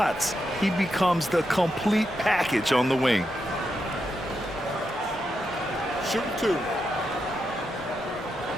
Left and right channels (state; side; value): normal; both; correlation 0.85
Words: he becomes the complete package on the wing. Shoot 2.